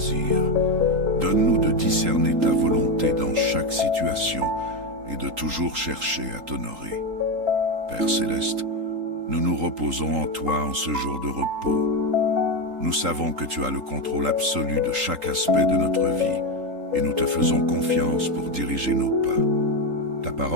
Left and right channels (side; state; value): left; late; 3.8 ms